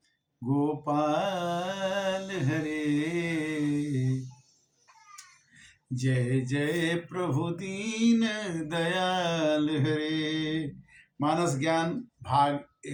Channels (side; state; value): both; identical; correlation 1.00